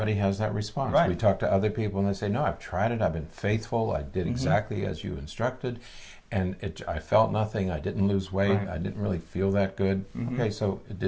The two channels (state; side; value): identical; both; correlation 1.00